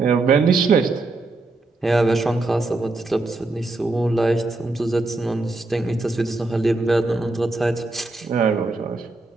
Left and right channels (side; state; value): left; quieter; 3.1 dB